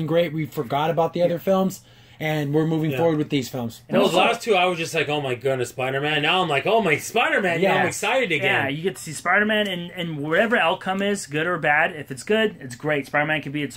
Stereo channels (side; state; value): both; identical; correlation 1.00